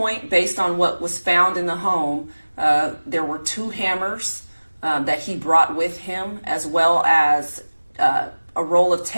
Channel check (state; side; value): inverted; both; correlation -1.00